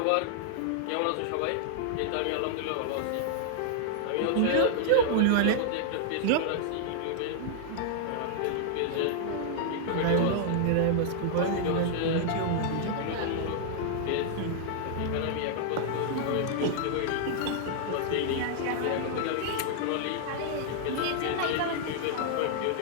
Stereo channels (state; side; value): different; both; correlation -0.01